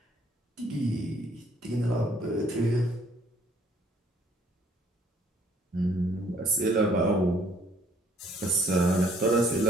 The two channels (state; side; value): normal; both; correlation 0.61